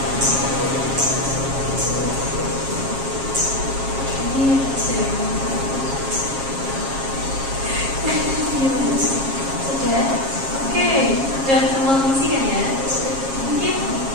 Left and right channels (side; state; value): left; late; 7.4 ms